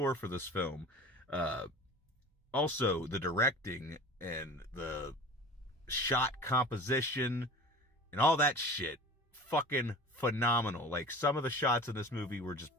for this film. Also, the directing and the shot composition and all that shit, fucking phenomenal. Like, some of the shots in this movie were just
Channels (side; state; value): both; normal; correlation 0.38